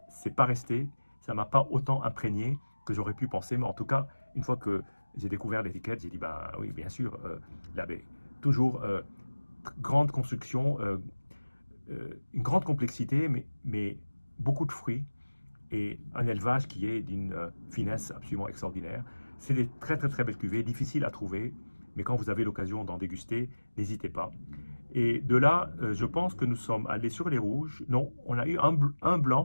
c'est pas resté, ça m'a pas autant imprégné que j'aurais pu penser. Mais en tout cas, une fois que j'ai découvert l'étiquette, j'ai dit, bah oui, bien sûr, la baie. Toujours grande construction, une grande complexité, mais beaucoup de fruits et un élevage qui est d'une finesse absolument extraordinaire. C'est des très très très belles cuvées, difficiles à trouver, mais quand vous avez l'occasion d'en déguster, n'hésitez pas. Et de là, je pense que nous sommes allés sur les rouges. Non, on a eu un blanc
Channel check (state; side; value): inverted; both; correlation -1.00